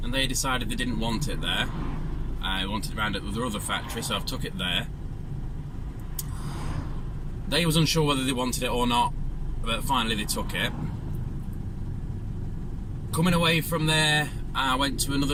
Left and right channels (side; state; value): both; identical; correlation 1.00